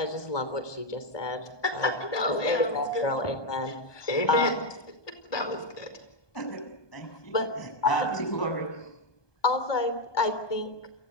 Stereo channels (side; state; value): right; late; 1.2 ms